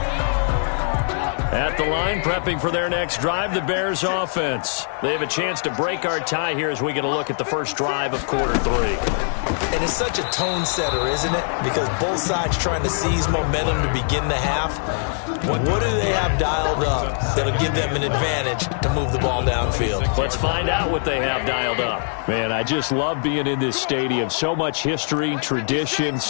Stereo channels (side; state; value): right; silent; digital silence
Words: At the line, prepping for their next drive, the Bears offense. They have a chance to break our tie here as we get a look at the first drive of quarter 3. And it's such a tone setter, isn't it? Because both sides trying to seize momentum to begin the half. What do they have dialed up that'll give them an advantage to move the ball downfield? Let's find out what they have dialed up. Man, I just love being in this stadium. So much history, tradition,